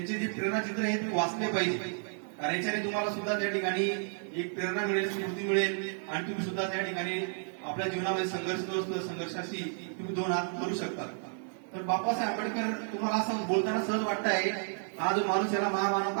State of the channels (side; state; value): left; silent; 57 dB below the other